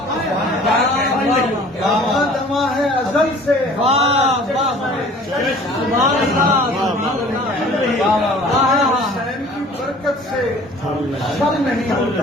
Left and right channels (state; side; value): normal; both; correlation 0.49